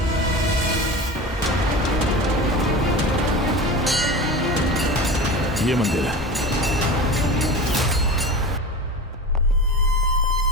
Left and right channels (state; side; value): normal; both; correlation 0.30